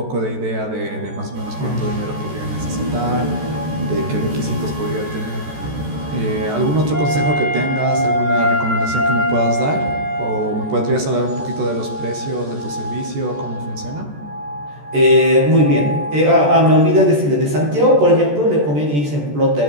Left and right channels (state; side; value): late; left; 14 ms